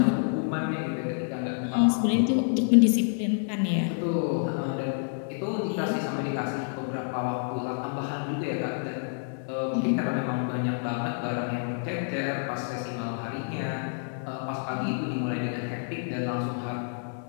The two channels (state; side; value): silent; right; digital silence